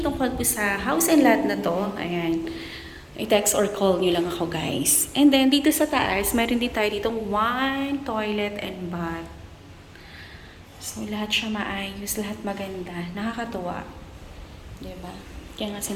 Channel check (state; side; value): identical; both; correlation 1.00